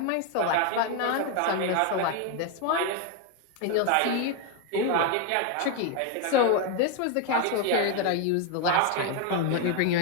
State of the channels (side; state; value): both; different; correlation 0.01